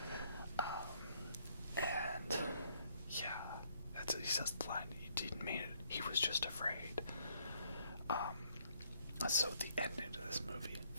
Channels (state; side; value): inverted; both; correlation -0.68